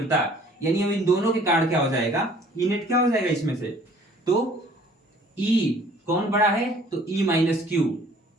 यानी अब इन दोनों के कारण क्या हो जाएगा, ई नेट क्या हो जाएगा इसमें से, तो ई कौन बड़ा है, तो ई माइनस क्यू,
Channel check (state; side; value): normal; both; correlation 0.54